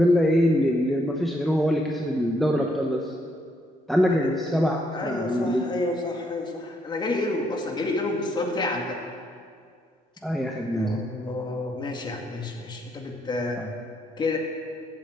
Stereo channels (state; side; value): normal; both; correlation 0.74